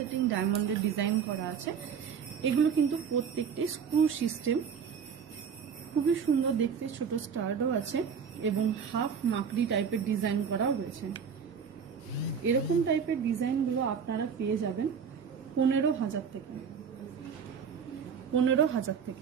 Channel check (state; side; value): quieter; left; 6.8 dB